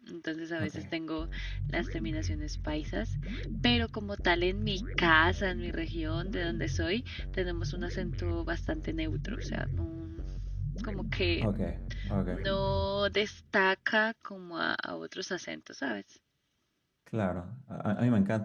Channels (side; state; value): both; identical; correlation 1.00